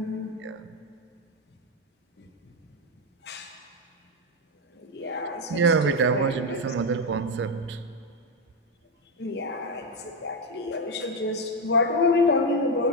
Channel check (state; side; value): normal; both; correlation 0.07